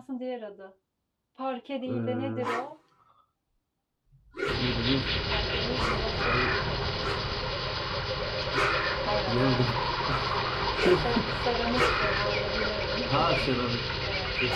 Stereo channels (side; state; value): both; identical; correlation 1.00